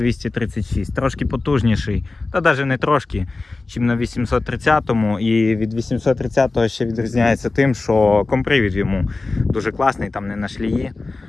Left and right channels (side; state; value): right; quieter; 3.5 dB